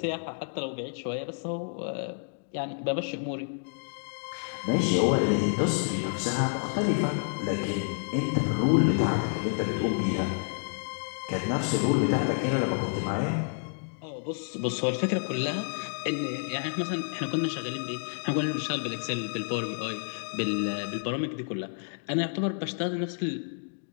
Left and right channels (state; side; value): silent; right; digital silence